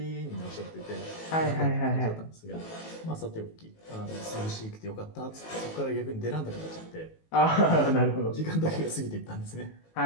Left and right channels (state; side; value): late; right; 18 ms